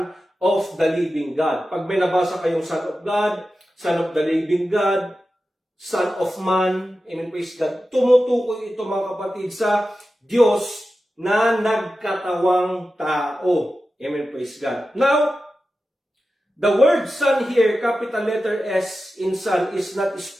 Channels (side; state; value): both; normal; correlation 0.93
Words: of the living God. Pag may nabasa kayong Son of God, Son of the living God, Son of Man, amen, praise God, tumutukoy ito, mga kapatid, sa Diyos na nagkatawang tao. Amen, praise God. Now, the word Son here, capital letter S in Son, is not